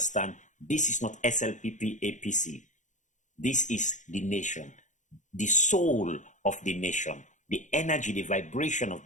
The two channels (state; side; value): late; right; 0.36 ms